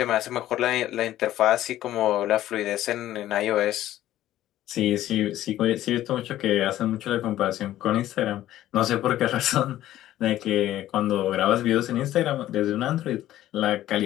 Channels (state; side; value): quieter; right; 13.6 dB